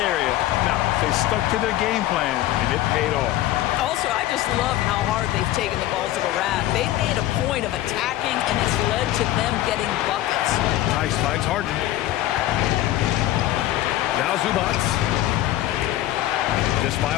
Now, they stuck to their game plan, and it paid off. Also, I just love how hard they've taken the ball to the rack. They've made a point of attacking, and it's led to them getting buckets. Tice finds Harden. Now Zubats. Just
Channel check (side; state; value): right; quieter; 14.6 dB